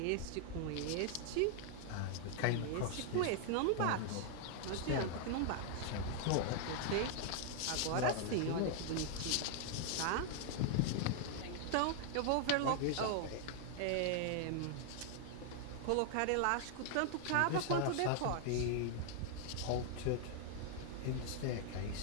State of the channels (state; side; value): different; both; correlation 0.00